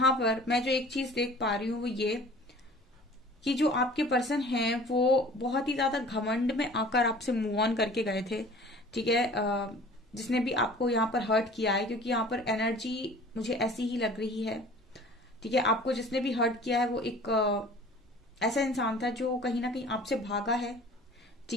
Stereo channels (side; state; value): both; normal; correlation 0.46